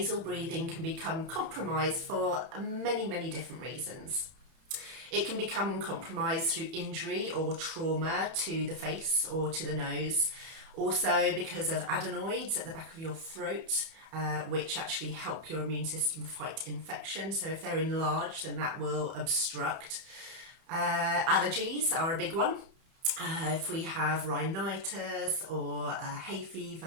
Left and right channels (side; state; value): left; late; 31 ms